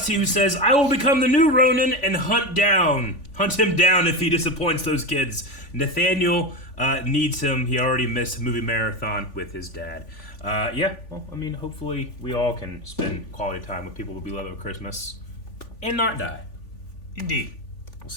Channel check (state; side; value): late; right; 3.5 ms